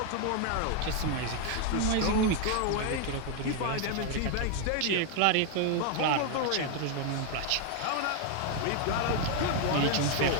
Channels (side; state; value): both; different; correlation 0.01